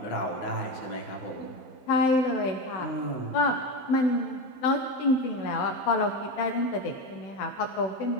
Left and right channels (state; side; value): late; right; 15 ms